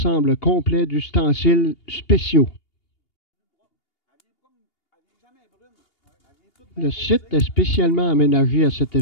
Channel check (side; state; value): right; late; 2.8 ms